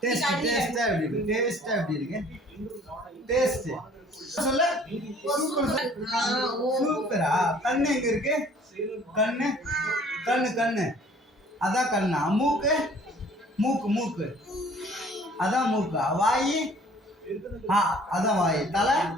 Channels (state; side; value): normal; both; correlation 0.53